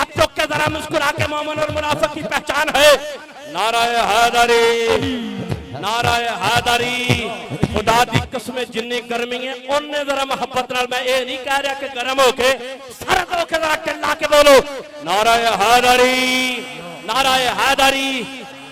चौक के जरा मुस्कुरा के मोमिन और मुनाफिक की पहचान है। नाराए हैदरी, नाराए हैदरी, खुदा दी कसम जिन्नी गर्मी है उन्ने जरा मोहब्बत नाल, मैं ये नहीं कह रहा कि गर्म होके सरद होके जरा चिल्ला के बोलो नाराए हैदरी, नाराए हैदरी।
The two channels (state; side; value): identical; both; correlation 1.00